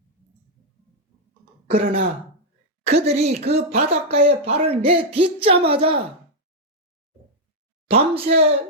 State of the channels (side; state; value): both; normal; correlation -0.01